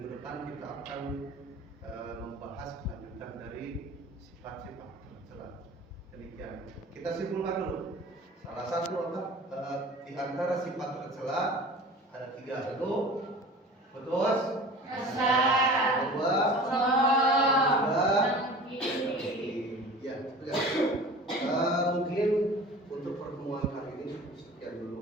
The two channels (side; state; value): both; normal; correlation 0.40